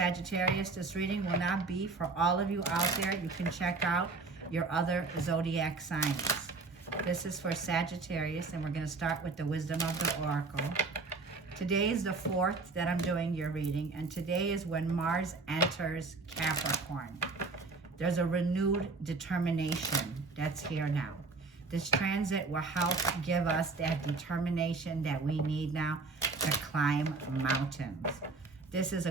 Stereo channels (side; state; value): left; quieter; 3.9 dB